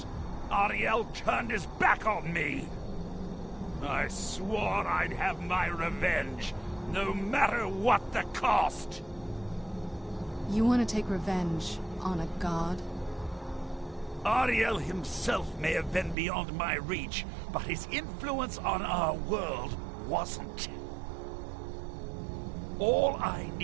Ariel turned his back on me. I swore I'd have my revenge, no matter what the cost. You want to take revenge on a god? Ariel himself may have been beyond my reach, but his influence on our world wasn't. All I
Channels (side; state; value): left; drops out; at 16.2 s